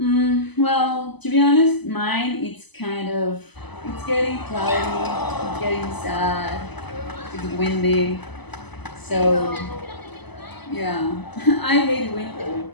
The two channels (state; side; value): late; right; 0.99 ms